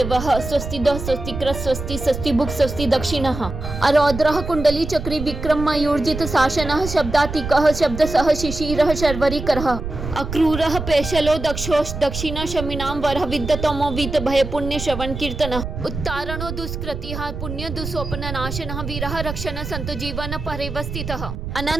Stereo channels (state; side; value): noise; right; rumble, 7 dB below the sound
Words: स्वस्तिदः स्वस्तिकृत स्वस्ति स्वस्तिभुक् स्वस्ति दक्षिणः अरौद्रः कुंडली चक्री विक्रम मयूर्जित शासनः शब्दातिकः शब्दसः शिशिरः शर्वरीकरः अक्रूरः पेशलो दक्षोष दक्षिण शमिनां वरः विद्यतमो वीत भय पुण्य श्रवण कीर्तनः उत्तारणो दुष्कृतिः पुण्य दुस्वप्न नाशनः वीरः रक्षण संत जीवन परिवस्थितः